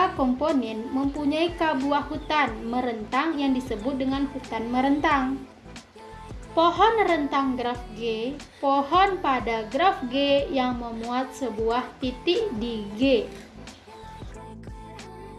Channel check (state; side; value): identical; both; correlation 1.00